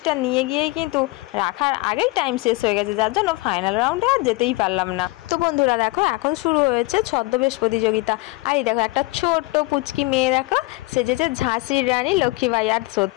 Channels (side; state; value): right; quieter; 22.9 dB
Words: নিয়ে গিয়েই কিন্তু রাখার আগেই টাইম শেষ হয়ে গেছে, যার জন্য ফাইনাল রাউন্ডে আর যেতেই পারলাম না। তো বন্ধুরা দেখো এখন শুরু হয়েছে ছদ্মবেশ প্রতিযোগিতা। আর এই দেখো একটা ছোট্ট পুচকি মেয়ে দেখো সেজেছে ঝাঁসির রানী লক্ষ্মীবাই। আর